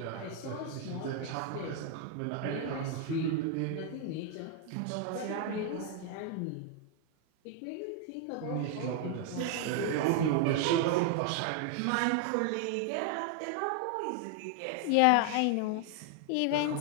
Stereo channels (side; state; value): both; different; correlation 0.00